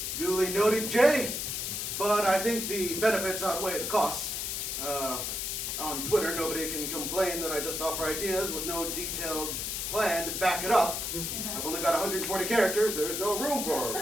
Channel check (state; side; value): noise; left; hiss, 3 dB below the sound